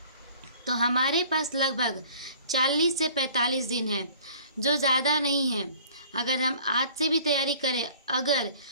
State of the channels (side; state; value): both; inverted; correlation -0.51